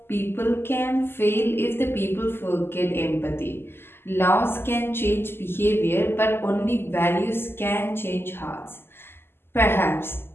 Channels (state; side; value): late; right; 0.11 ms